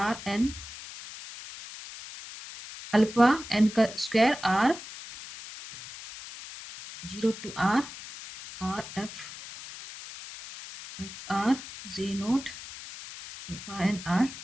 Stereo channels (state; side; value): noise; left; hiss, 13 dB below the sound